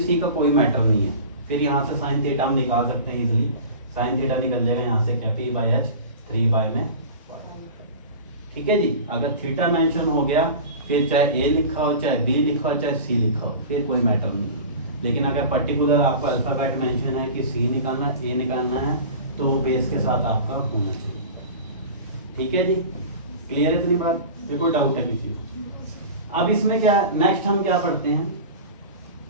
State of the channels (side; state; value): both; inverted; correlation -0.35